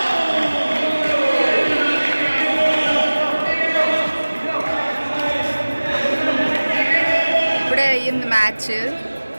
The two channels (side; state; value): both; inverted; correlation -1.00